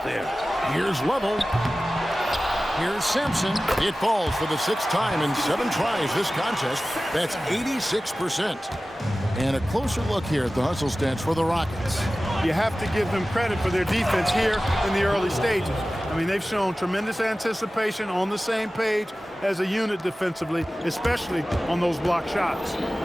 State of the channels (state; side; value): normal; both; correlation 0.96